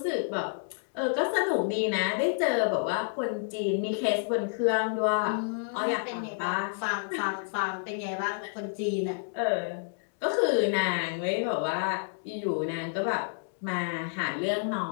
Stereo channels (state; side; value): silent; right; digital silence